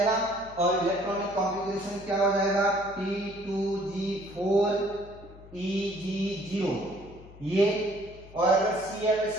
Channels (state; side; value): noise; left; hum, 19 dB below the sound